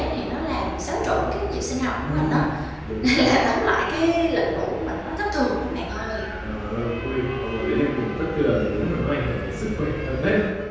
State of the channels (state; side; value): identical; both; correlation 1.00